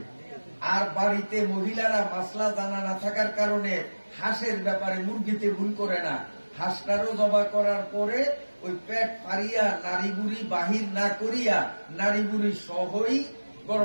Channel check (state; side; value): inverted; both; correlation -1.00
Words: আর বাড়িতে মহিলারা মাসলা জানা না থাকার কারণে হাঁসের ব্যাপারে মুরগিতে ভুল করে না, হাঁসটারও জবা করার পরে ওই পেট ফারিয়া নারী বুড়ি বাহির না করিয়া নারী বুড়ি সহই